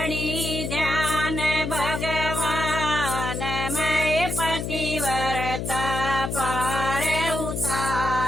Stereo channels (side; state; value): left; noise; hum, 3 dB below the sound